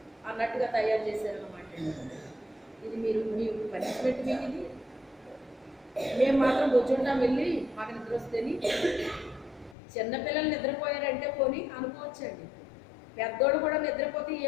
అన్నట్టుగా తయారు చేశారన్నమాట. ఇది మీ పనిష్మెంట్ మీకు. ఇది మేము మాత్రం కూర్చుంటాం వెళ్ళి మాకు నిద్ర వస్తేని. చిన్నపిల్లలు నిద్రపోయారంటే పోనీ అనుకోవచ్చండి, పెద్దోళ్ళు కూడా నిద్రపోతే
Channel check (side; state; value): right; drops out; at 9.8 s